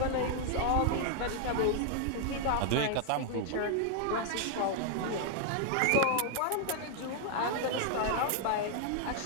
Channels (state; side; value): different; both; correlation 0.00